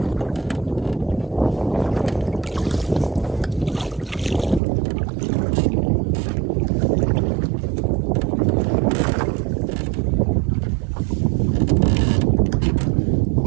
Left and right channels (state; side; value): drops out; left; at 4.6 s